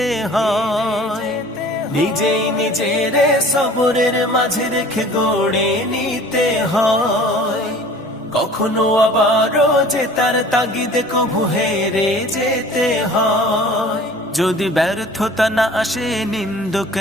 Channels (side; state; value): both; normal; correlation 0.46